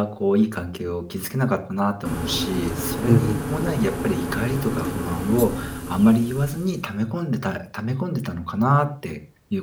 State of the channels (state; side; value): identical; both; correlation 1.00